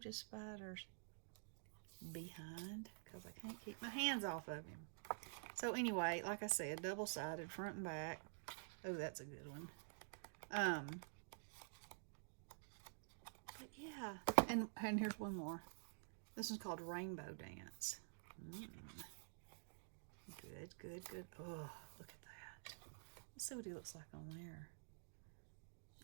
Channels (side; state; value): left; silent; digital silence